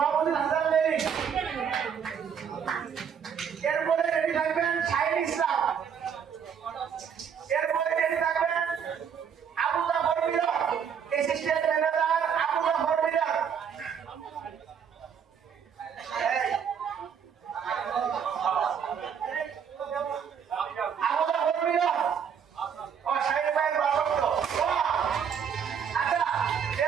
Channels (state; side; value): quieter; left; 7.5 dB